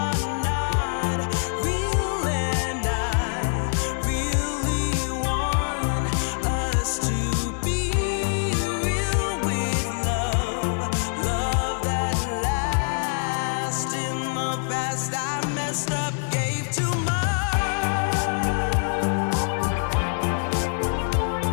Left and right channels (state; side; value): silent; right; digital silence